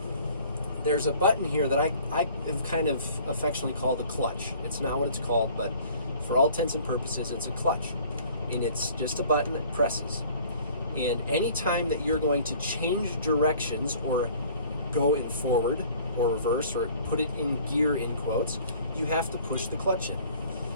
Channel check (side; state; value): both; inverted; correlation -0.52